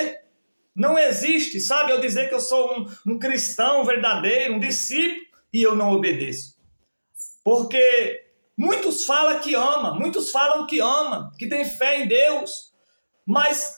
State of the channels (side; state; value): both; inverted; correlation -1.00